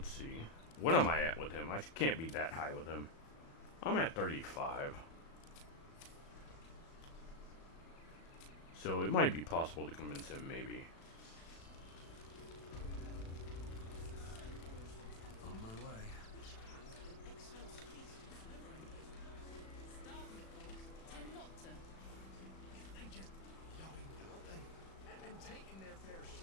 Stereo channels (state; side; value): late; right; 36 ms